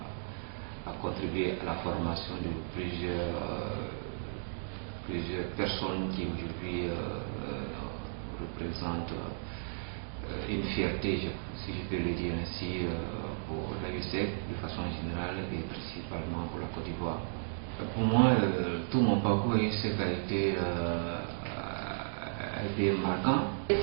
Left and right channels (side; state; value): left; silent; digital silence